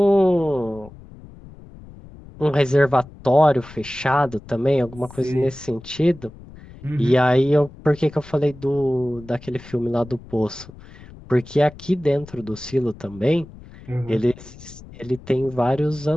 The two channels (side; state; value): left; noise; rumble, 19 dB below the sound